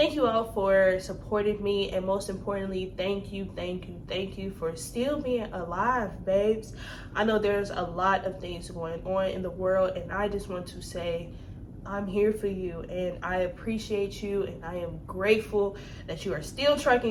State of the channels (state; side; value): identical; both; correlation 1.00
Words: you all for supporting me. And most importantly, thank you for still being alive, babes. I know there's a lot of things going on in the world, and I just want to say I'm here for you, and I appreciate you, and I am grateful that you are still